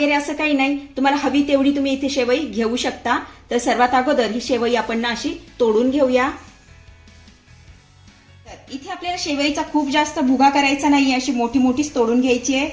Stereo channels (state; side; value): identical; both; correlation 1.00